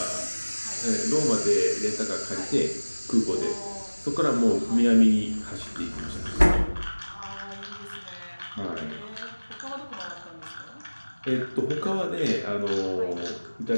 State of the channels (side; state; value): both; inverted; correlation -1.00